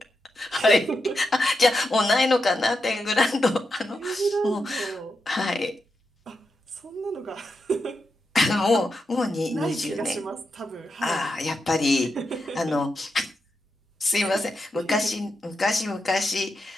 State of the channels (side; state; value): both; normal; correlation 0.86